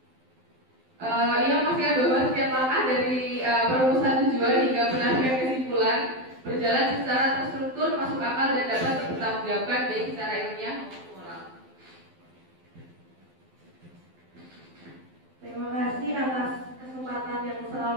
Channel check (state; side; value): late; left; 12 ms